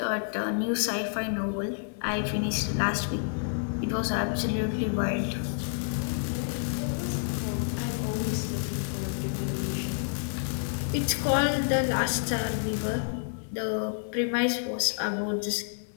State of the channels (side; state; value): right; silent; digital silence